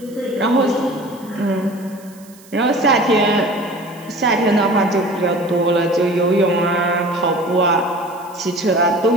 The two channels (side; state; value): right; noise; hiss, 25 dB below the sound